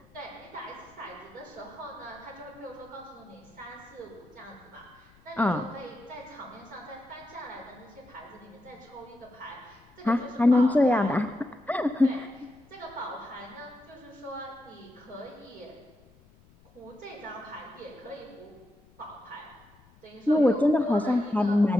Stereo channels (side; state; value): left; noise; rumble, 28 dB below the sound